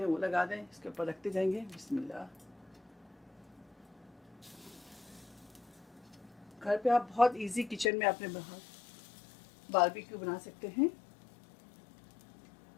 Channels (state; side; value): drops out; right; at 7.9 s